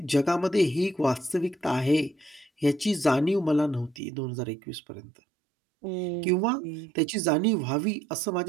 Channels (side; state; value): left; drops out; at 4.0 s